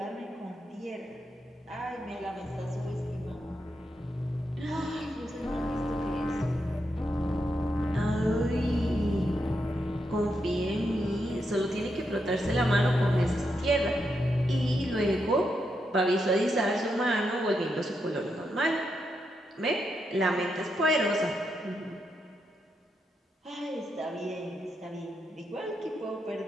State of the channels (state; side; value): normal; both; correlation 0.83